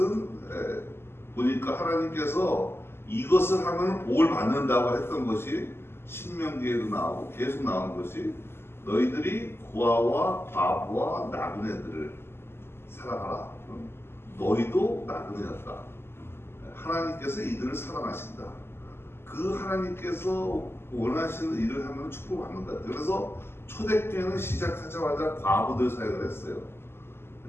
보니까 하나님께서 이것을 하면 복을 받는다고 했던 것이 신명기에도 나오고 계속 나오는 것이 너희들이 고아와 과부와 나그네들을 사랑하라. 너희도 나그네였다. 하나님께서 이들을 사랑하신다. 그 하나님께서 원하시는 일을 하면 축복을 받는 것 같아요. 그래서 초대교회는 시작하자마자 과부들 사역을 했어요.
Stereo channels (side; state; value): right; late; 0.12 ms